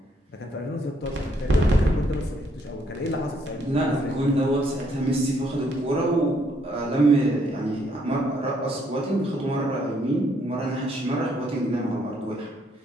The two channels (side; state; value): both; normal; correlation 0.70